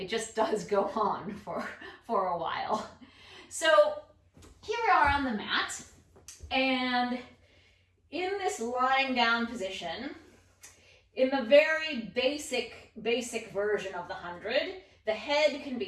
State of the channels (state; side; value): identical; both; correlation 1.00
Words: just does go on for a while. So here we are on the mat, and in this lying down position, in the very basic version of the 100, the head can